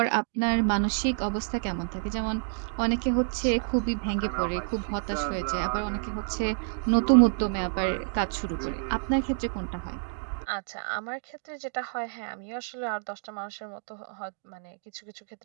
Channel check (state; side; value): silent; left; digital silence